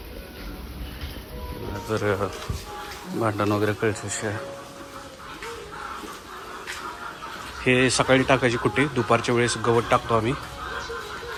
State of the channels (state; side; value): identical; both; correlation 1.00